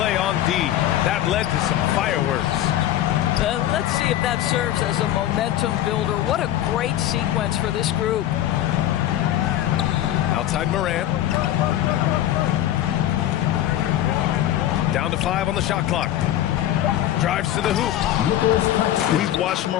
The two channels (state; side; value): quieter; right; 12.6 dB